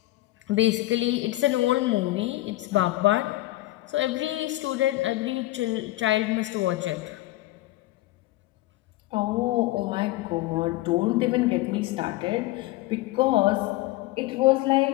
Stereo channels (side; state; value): right; quieter; 18.2 dB